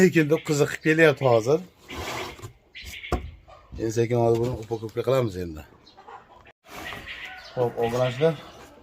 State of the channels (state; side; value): identical; both; correlation 1.00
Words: ekan deb qiziqib kelyapti hozir. Endi sekin hozir buni upokovka qilamiz endi. Xo'p, obunachilar.